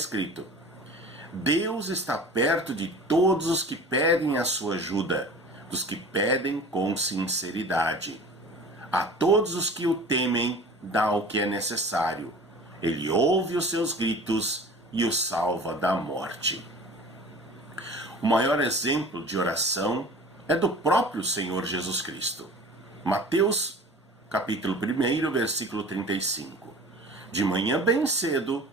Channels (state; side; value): normal; both; correlation 0.42